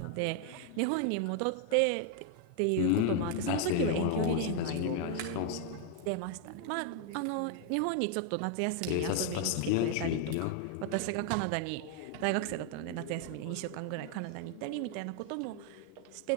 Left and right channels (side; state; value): both; different; correlation 0.00